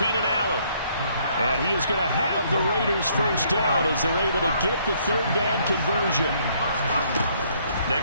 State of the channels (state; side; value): inverted; both; correlation -0.66